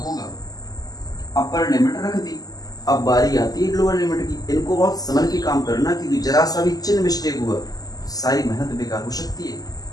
अपर लिमिट रख दी, अब बारी आती है लोअर लिमिट की। इनको बहुत समझ के काम करना, क्योंकि जरा सा भी चिन्ह मिस्टेक हुआ सारी मेहनत बेकार हो सकती है।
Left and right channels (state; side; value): late; right; 0.18 ms